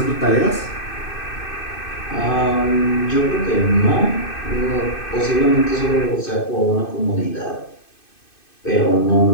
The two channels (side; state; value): right; late; 2.6 ms